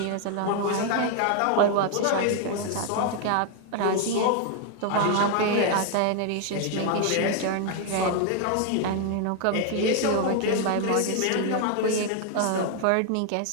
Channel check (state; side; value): different; both; correlation 0.01